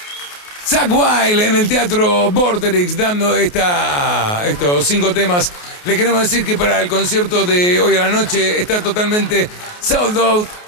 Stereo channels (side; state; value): right; late; 28 ms